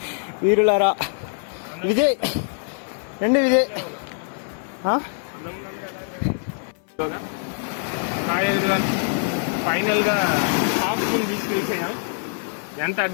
వీరులారా. విజయ్ రండి, విజయ్. ఫైనల్గా హాఫ్ మూన్ బీచ్కి వెళ్ళిపోయాం. ఎంత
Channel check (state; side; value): silent; right; digital silence